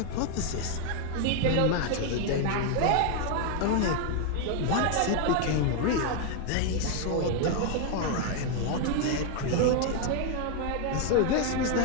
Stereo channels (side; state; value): both; different; correlation 0.00